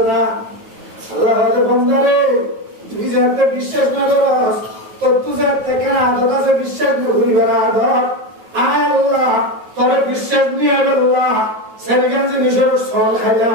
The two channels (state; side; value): late; left; 9.3 ms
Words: na Allah hade bandare তুই যাতে বিশ্বাস না করস তো তুই যাতে কেন আদত আছে বিশ্বাস না করি বড় আদত আয় আল্লাহ তোর বিশ্বাস নিয়ে আল্লাহ সেরগান যে নিজের সল